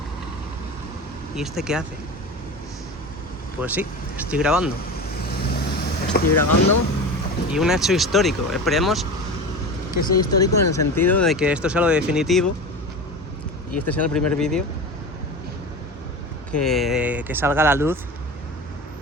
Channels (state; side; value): normal; both; correlation 0.29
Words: ¿Y este qué hace? Pues sí, estoy grabando y un hecho histórico. Esperemos que sea histórico en el sentido de que esto sea lo definitivo y este sea el primer vídeo que salga a la luz